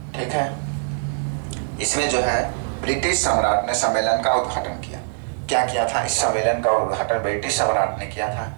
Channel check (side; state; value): left; silent; 64 dB below the other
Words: ठीक है, इसमें जो है ब्रिटिश सम्राट ने सम्मेलन का उद्घाटन किया। क्या किया था, इस सम्मेलन का उद्घाटन ब्रिटिश सम्राट ने किया था,